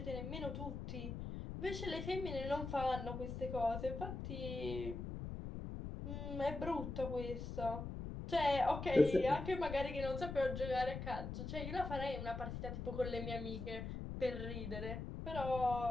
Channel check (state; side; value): noise; left; rumble, 6 dB below the sound